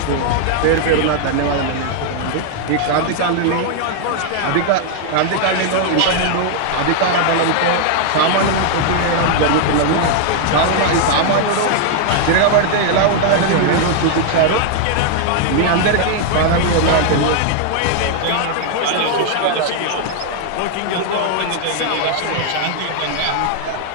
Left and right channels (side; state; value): both; different; correlation 0.00